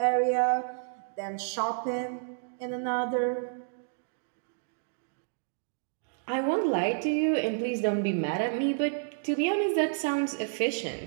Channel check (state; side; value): silent; left; digital silence